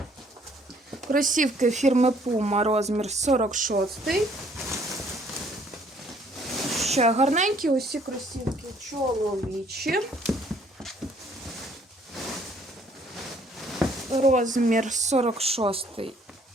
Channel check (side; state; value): both; normal; correlation 0.62